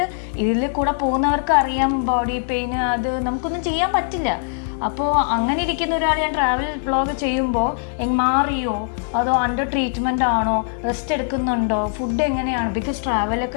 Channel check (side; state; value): right; silent; 65 dB below the other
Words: ഇതിൽ കൂടെ പോകുന്നവർക്ക് അറിയാം ബോഡി പെയിൻ, അത് നമുക്കൊന്നും ചെയ്യാൻ പറ്റില്ല. അപ്പോൾ അങ്ങനെ ഇരിക്കുന്ന ഒരാൾ ഞാൻ ട്രാവൽ വ്ളോഗ് ചെയ്യുമ്പോൾ മാറിയോ, അതോ അണ്ടർ ട്രീറ്റ്മെൻ്റ് ആണോ, റെസ്റ്റ് എടുക്കുന്നുണ്ടോ, ഫുഡ് എങ്ങനെയാണ്? ബിക്കോസ്